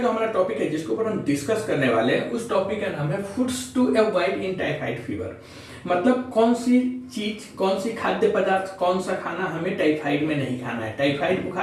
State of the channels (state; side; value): identical; both; correlation 1.00